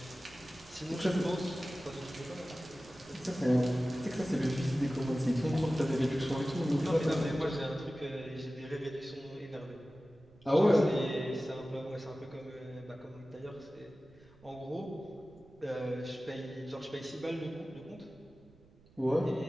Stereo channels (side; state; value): right; noise; rumble, 26 dB below the sound